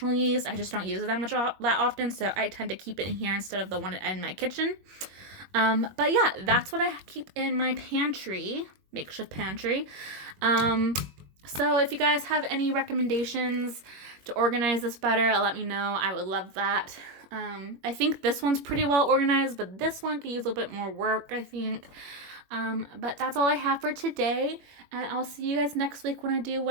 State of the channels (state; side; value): late; left; 21 ms